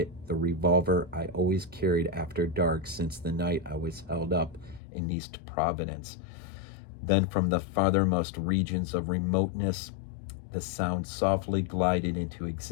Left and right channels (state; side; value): drops out; right; at 4.8 s